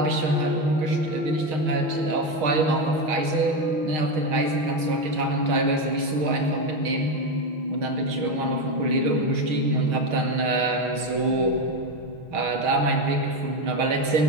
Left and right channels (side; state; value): left; late; 6.5 ms